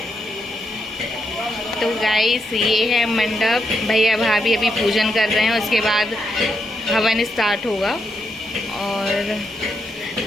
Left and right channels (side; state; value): both; normal; correlation 0.81